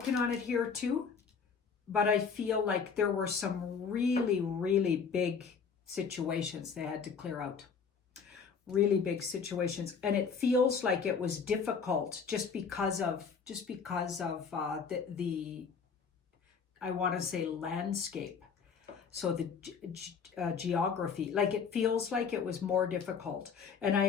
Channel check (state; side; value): quieter; right; 6.0 dB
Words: on it here too. But I feel like there were some really, really big situations they had to clear out. Really big situations. And it feels like it was difficult just because of the I want to say landscape. So the geography, like it feels like it was more difficult. And